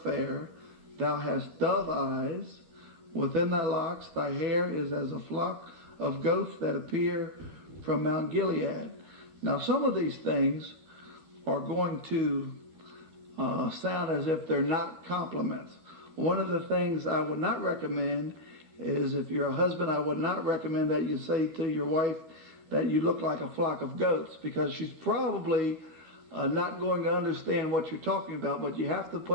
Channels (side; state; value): left; late; 13 ms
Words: fair. Thou hast dove eyes. Within thy locks, thy hair is as a flock of goats that appear from Mount Gilead. Now, some of these things are going to sound as if they're not compliments. One of the things I would not recommend is, if you're a husband, I would not recommend that you say to your wife that you look like a flock of goats, because she's probably not going to understand what you're talking about. But you have to